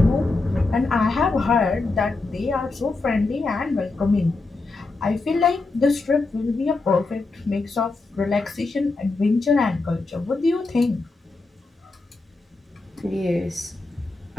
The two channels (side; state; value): right; quieter; 3.5 dB